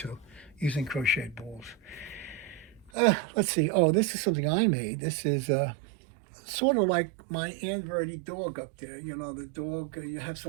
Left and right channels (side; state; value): left; drops out; at 2.9 s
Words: using crocheted balls. Let's see. Oh, this is something I made. This is sort of like my Aunt Verdi dog up there. You know, the dog, you have